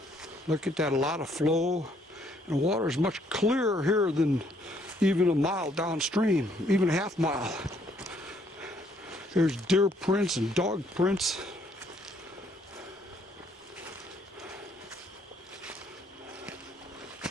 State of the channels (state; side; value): normal; both; correlation 0.67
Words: Look at that, a lot of flow. And the water is much clearer here than even a mile downstream, even a half mile. There's deer prints and dog prints.